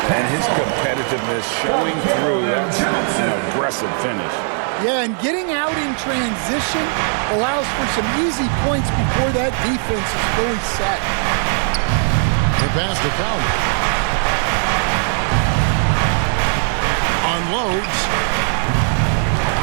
And his competitiveness showing through. That's an aggressive finish. Yeah, and getting out in transition allows for some easy points before that defense is fully set. The pass to Conley. Unloads.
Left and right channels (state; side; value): silent; left; 67 dB below the other